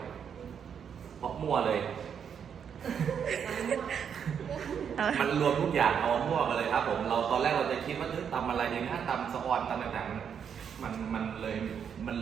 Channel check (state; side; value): quieter; left; 7.6 dB